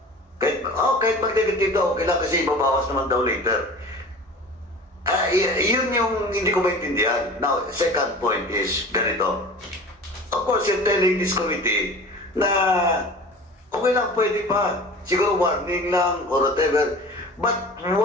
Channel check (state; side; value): normal; both; correlation 0.39